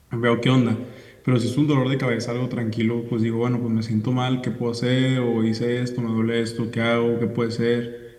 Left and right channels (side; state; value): both; identical; correlation 1.00